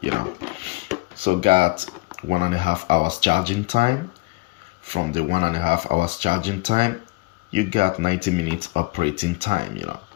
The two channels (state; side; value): quieter; right; 23.3 dB